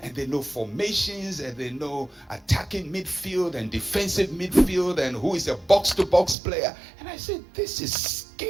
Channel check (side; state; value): left; drops out; at 6.4 s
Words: and they know formations, and they know attacking midfield and defensive midfield, and who is a box-to-box player. And I said, this is